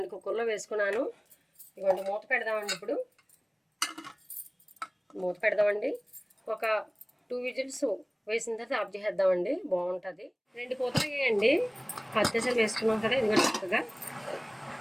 కుక్కర్లో వేసుకున్నాను. ఇదిగోండి మూత పెడదామండి. ఇప్పుడు మూత పెడదామండి. ఒక 2 విజిల్స్ వేసిన తర్వాత ఆఫ్ చేసేద్దామండి. బాగుంటుంది. 2 కూతలు వేయండి. అత్యవసరం వేసుకున్నాం కదా. ఇదిగోండి చక్కగా.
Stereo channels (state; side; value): identical; both; correlation 1.00